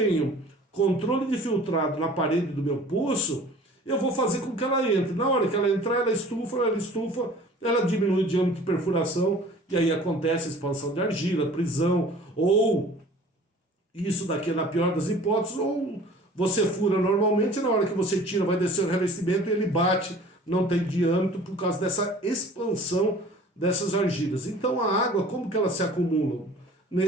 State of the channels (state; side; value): normal; both; correlation 0.47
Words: controle de filtrado na parede do meu poço, eu vou fazer com que ela entre. Na hora que ela entrar, ela estufa, ela diminui o diâmetro de perfuração, e aí acontece a expansão de argila, prisão, ou isso daqui é na pior das hipóteses, ou você fura normalmente, na hora que você tira, vai descer o revestimento e ele bate, não tem diâmetro por causa dessa expansão dessas argilas. Então a água, como que ela se acumula?